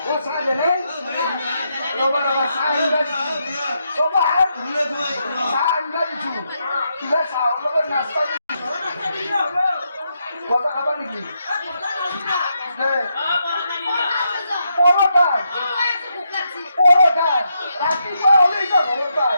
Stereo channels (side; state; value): both; inverted; correlation -0.81